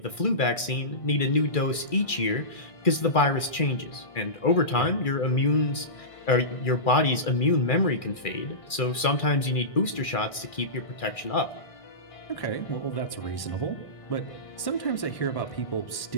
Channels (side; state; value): right; late; 2.4 ms